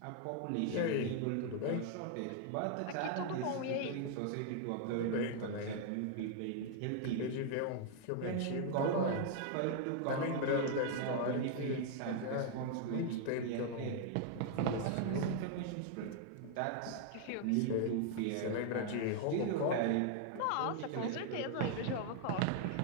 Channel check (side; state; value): both; different; correlation 0.00